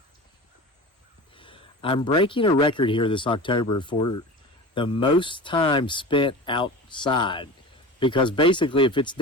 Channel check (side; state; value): both; normal; correlation 0.32